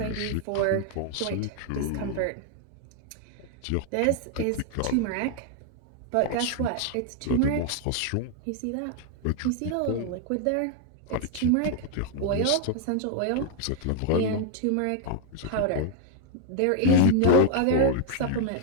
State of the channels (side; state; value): both; different; correlation 0.00